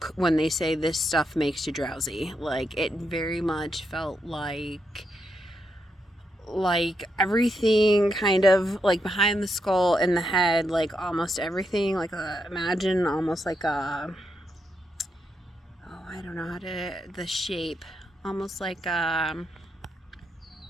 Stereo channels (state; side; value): normal; both; correlation 0.81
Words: when they say this stuff makes you drowsy. Like, it very much felt like everything kind of like behind the skull in the head, like almost everything, like imagine almost like a, oh, I don't know how to, the shape, almost like a